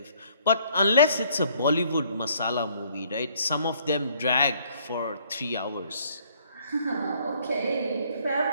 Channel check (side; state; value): both; inverted; correlation -0.63